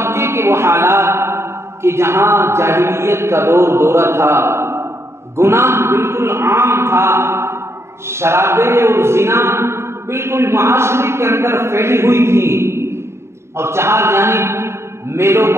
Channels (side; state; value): left; late; 0.13 ms